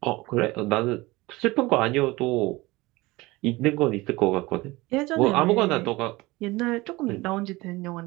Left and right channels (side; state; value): left; quieter; 21.2 dB